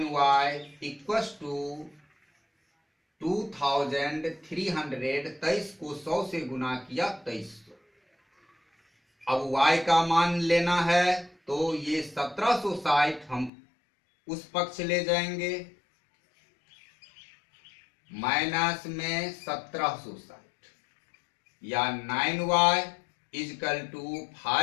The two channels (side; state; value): right; drops out; at 13.5 s